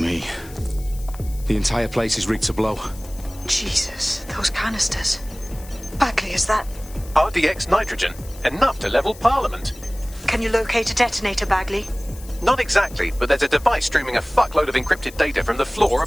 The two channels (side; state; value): left; noise; hiss, 20 dB below the sound